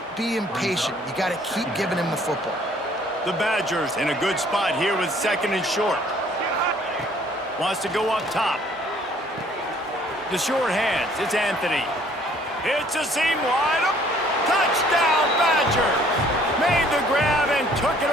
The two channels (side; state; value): both; normal; correlation 0.59